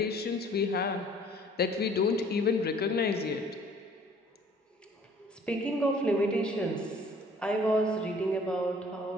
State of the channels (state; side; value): normal; both; correlation 0.55